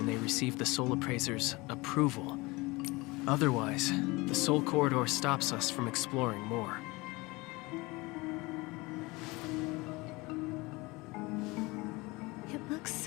they receive the soul appraiser's approval. Otherwise, the soul corridor stops us from exploring more. It looks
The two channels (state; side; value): quieter; right; 23.4 dB